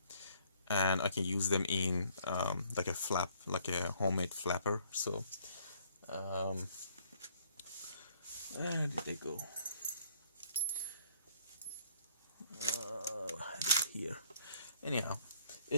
I can use them in like a flap, like a homemade flapper. So where did they go? Here. Anyhow,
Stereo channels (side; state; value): both; inverted; correlation -0.64